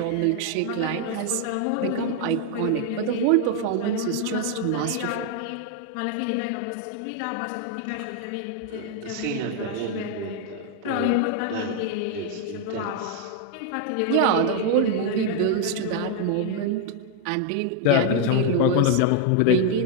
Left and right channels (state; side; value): different; both; correlation 0.00